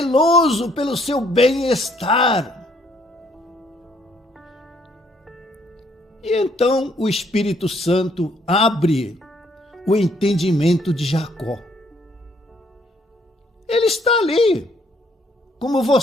pelo seu bem-estar. E então o Espírito Santo abre o entendimento de Jacó. Ele está ali, como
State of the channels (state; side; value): normal; both; correlation 0.67